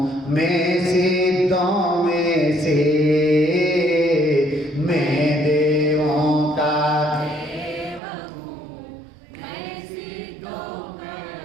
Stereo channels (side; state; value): left; drops out; at 8.0 s